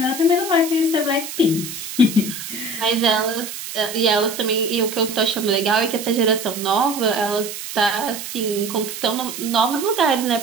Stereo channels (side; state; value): right; noise; hiss, 9 dB below the sound